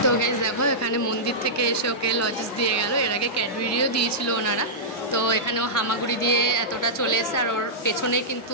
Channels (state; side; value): normal; both; correlation -0.13